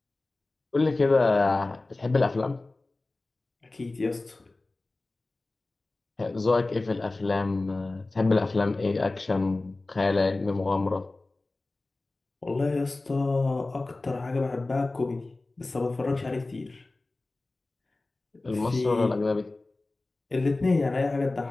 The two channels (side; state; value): right; quieter; 3.1 dB